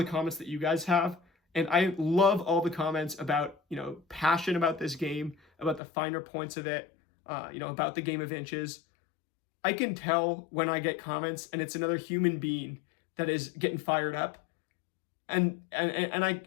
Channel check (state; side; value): drops out; right; at 5.8 s